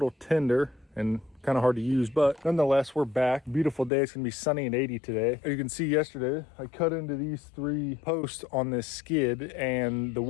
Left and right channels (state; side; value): drops out; right; at 3.9 s